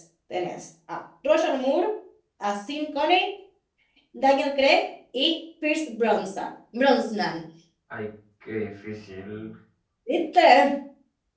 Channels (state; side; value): identical; both; correlation 1.00